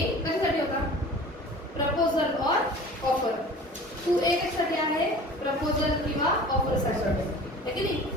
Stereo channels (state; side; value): normal; both; correlation 0.41